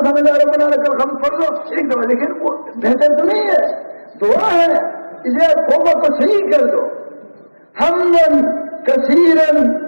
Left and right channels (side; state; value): both; inverted; correlation -1.00